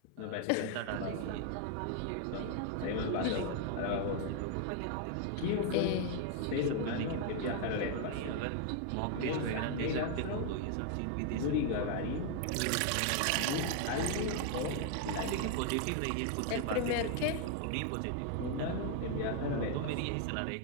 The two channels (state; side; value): different; both; correlation 0.00